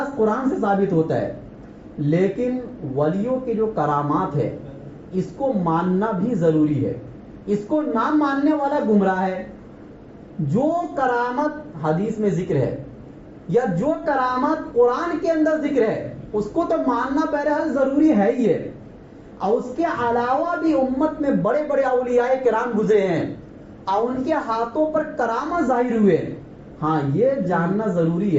قرآن سے ثابت ہوتا ہے. لیکن ولیوں کے جو کرامات ہے اس کو ماننا بھی ضروری ہے. اس کو نہ ماننے والا گمراہ ہے. جو کرامت حدیث میں ذکر ہے یا جو کرامت قرآن کے اندر ذکر ہے اس کو تو ماننا بہرحال ضروری ہے ہی ہے. اور اس کے علاوہ بھی امت میں بڑے بڑے اولیاء کرام گزرے ہیں اور ان کے ہاتھوں پر کرامت ظاہر ہوئے. ہاں یہ جاننا ضروری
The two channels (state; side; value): identical; both; correlation 1.00